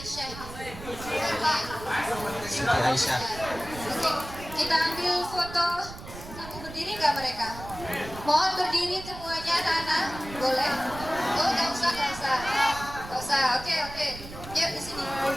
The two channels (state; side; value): noise; right; rumble, 13 dB below the sound